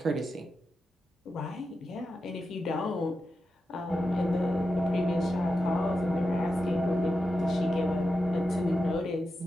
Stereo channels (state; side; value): normal; both; correlation 0.90